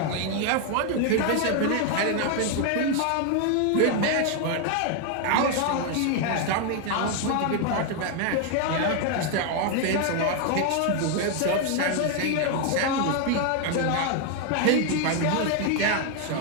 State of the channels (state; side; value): different; both; correlation 0.01